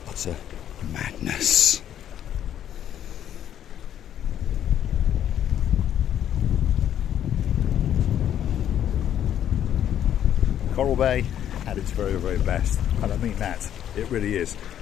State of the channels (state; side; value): quieter; right; 10.4 dB